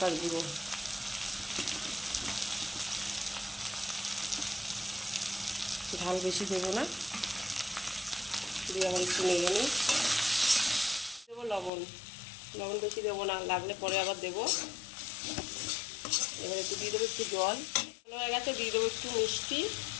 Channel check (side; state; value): right; drops out; at 11.7 s